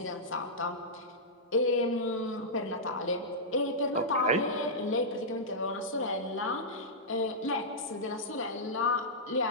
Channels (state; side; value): normal; both; correlation -0.12